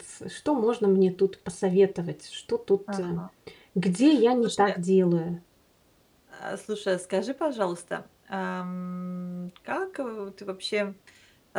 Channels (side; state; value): both; identical; correlation 1.00